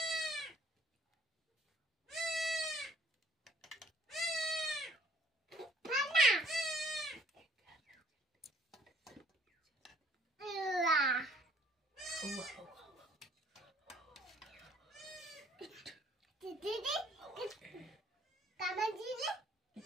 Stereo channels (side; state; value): both; normal; correlation 0.59